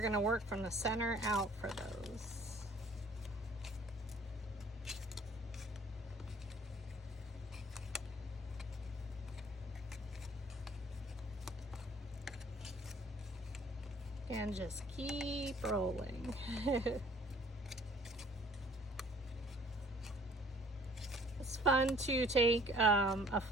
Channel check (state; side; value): normal; both; correlation 0.55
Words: going to work from the center out for those. And just keep rolling. It's fun to take a